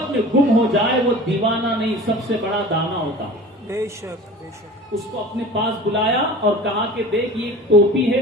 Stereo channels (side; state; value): both; normal; correlation 0.40